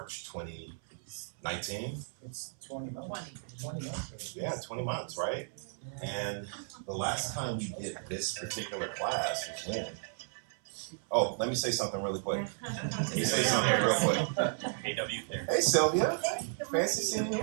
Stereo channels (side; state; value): left; silent; 55 dB below the other